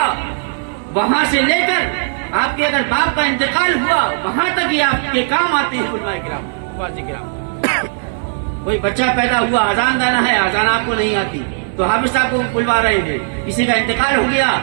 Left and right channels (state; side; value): silent; left; 59 dB below the other